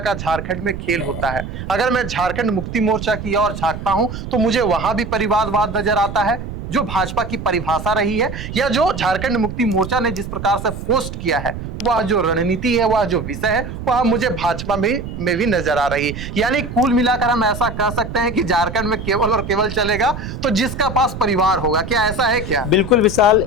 झारखंड में खेल होता है, अगर मैं झारखंड मुक्ति मोर्चा की ओर झांकता हूं तो मुझे वहां भी परिवारवाद नजर आता है जो भाजपा की परिभाषा रही है, या जो झारखंड मुक्ति मोर्चा ने जिस प्रकार से पोस्ट किया है वह जो रणनीति है, वह जो विषय है, वह मुझे भाजपा में भी नजर आ रही है। यानी कुल मिलाकर हम ऐसा कह सकते हैं कि झारखंड में केवल और केवल चलेगा तो जिसका पास परिवार होगा। क्या ऐसा है क्या? बिल्कुल विशाल,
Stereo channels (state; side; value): noise; right; rumble, 8 dB below the sound